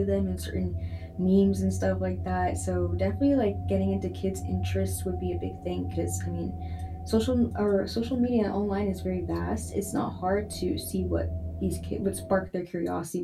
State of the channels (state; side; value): identical; both; correlation 1.00